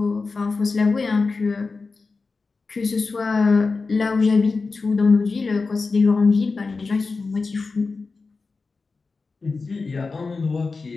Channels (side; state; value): right; quieter; 4.2 dB